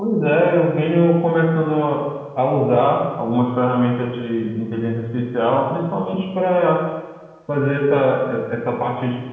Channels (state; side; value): identical; both; correlation 1.00